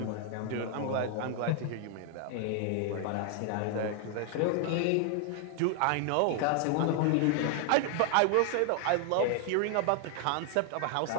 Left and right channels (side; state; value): both; different; correlation 0.00